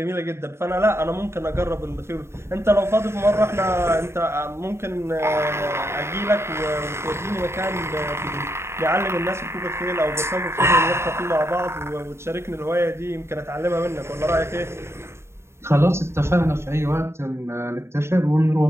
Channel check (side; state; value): left; late; 0.13 ms